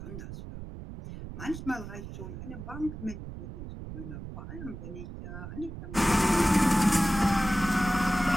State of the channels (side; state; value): right; noise; rumble, 10 dB below the sound